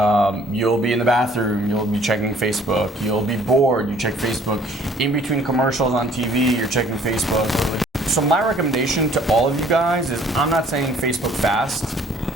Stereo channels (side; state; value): both; normal; correlation 0.57